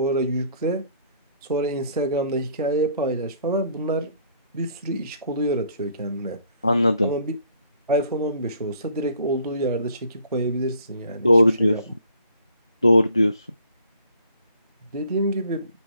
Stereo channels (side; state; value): both; inverted; correlation -0.60